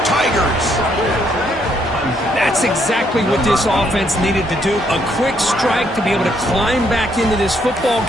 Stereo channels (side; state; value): both; normal; correlation 0.72